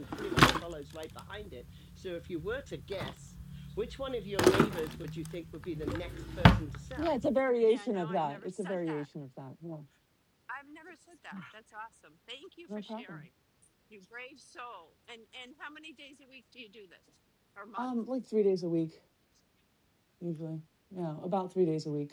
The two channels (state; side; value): identical; both; correlation 1.00